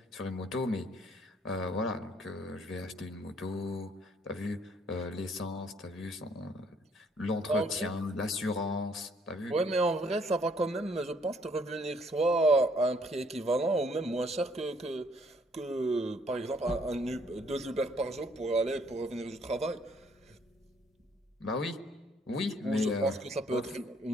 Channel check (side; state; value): both; normal; correlation 0.65